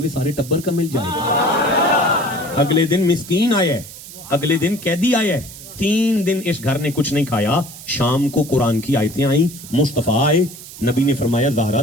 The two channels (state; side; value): noise; right; hiss, 15 dB below the sound